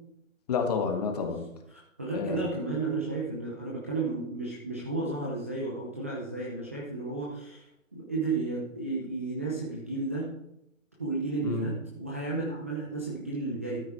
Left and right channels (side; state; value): both; normal; correlation -0.02